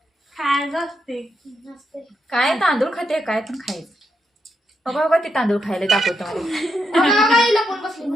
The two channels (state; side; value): normal; both; correlation 0.82